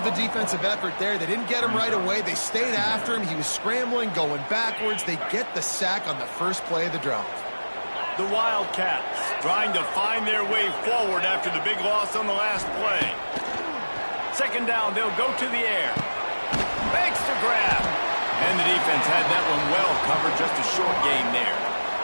the defensive effort there. They didn't get him right away. They stayed after him. He was scrambling, going backwards. They get the sack on the first play of the drive. The Wildcats trying to find their way forward after the big loss on the last play. Second down, they'll go to the air. Makes the grab. And the defense had that one well covered, just a short gain there.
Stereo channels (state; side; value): inverted; both; correlation -1.00